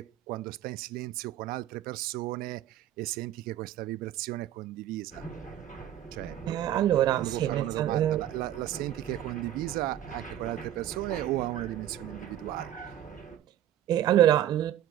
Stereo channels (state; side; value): quieter; left; 11.8 dB